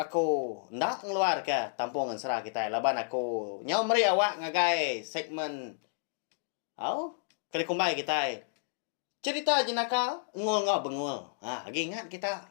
ndak ngeluar ke tampung ansra kita. Laban aku nyau meri awak ngagai segmen au kali kumbai kita. Cerita jenaka ngul ngau bengul. Lagi ingat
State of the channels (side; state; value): right; silent; digital silence